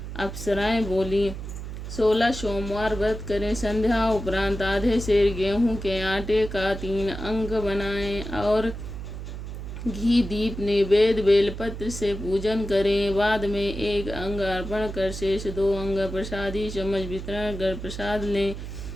अप्सराएं बोली, 16 सोमवार व्रत करें। संध्या उपरांत आधे सेर गेहूं के आटे का 3 अंग बनाएं और घी दीप नैवेद्य बेलपत्र से पूजन करें। बाद में 1 अंग अर्पण कर शेष 2 अंग प्रसादी चम्मच वितरण कर प्रसाद लें।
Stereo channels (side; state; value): right; noise; hum, 8 dB below the sound